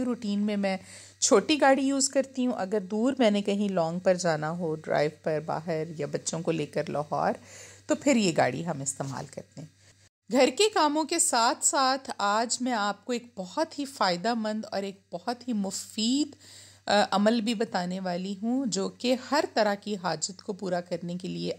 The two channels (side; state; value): both; identical; correlation 1.00